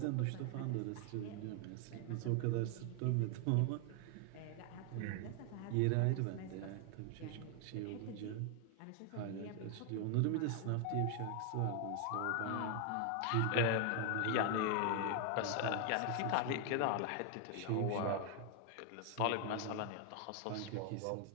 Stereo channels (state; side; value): different; both; correlation 0.00